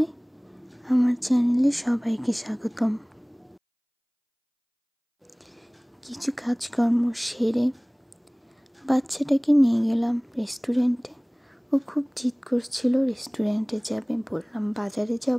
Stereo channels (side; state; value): both; identical; correlation 1.00